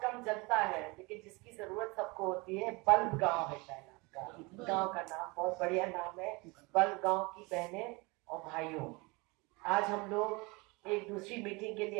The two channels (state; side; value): quieter; left; 26.2 dB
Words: कम जनता है लेकिन जिसकी जरूरत सबको होती है। बल्ब गांव है शायद आपका गांव का नाम, बहुत बढ़िया नाम है। बल्ब गांव की बहनें और भाइयों, आज हम लोग एक दूसरी मीटिंग के